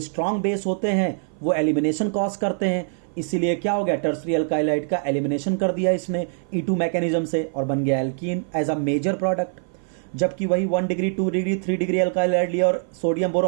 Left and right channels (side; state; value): left; silent; 56 dB below the other